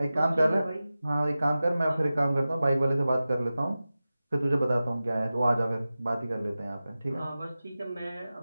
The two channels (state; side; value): inverted; both; correlation -0.95